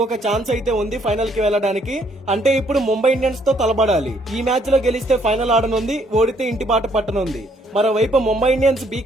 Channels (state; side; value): normal; both; correlation 0.67